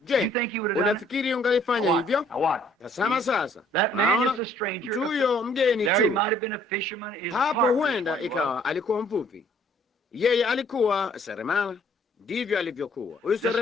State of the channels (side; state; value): both; normal; correlation 0.61